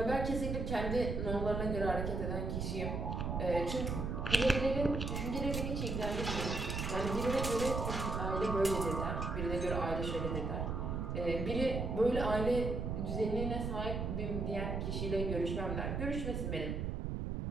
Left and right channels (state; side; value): noise; right; rumble, 2 dB below the sound